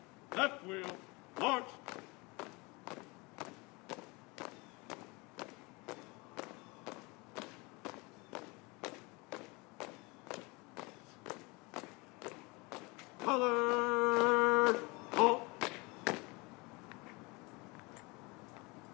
left wheel, march. Color, halt.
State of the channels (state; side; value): quieter; right; 26.2 dB